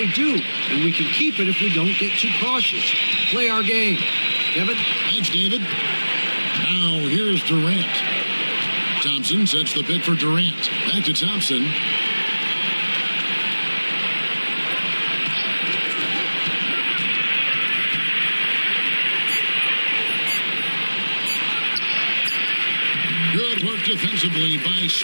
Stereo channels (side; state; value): both; inverted; correlation -1.00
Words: do, and we can keep it if we don't get too cautious. Play our game. Kevin? Thanks, David. Now here's Durant. Thompson sets the pick for Durant. Back to Thompson. Good work defensively by